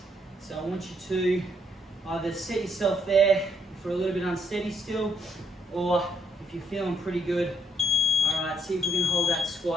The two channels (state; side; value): normal; both; correlation 0.72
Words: So I want you to either set yourself there if we're a little bit unsteady still, or if you're feeling pretty good, all right, see if we can hold that